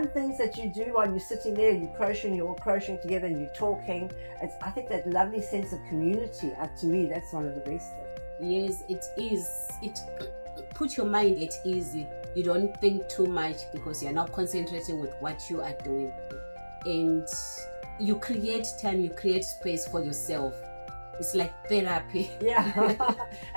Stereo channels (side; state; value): both; inverted; correlation -1.00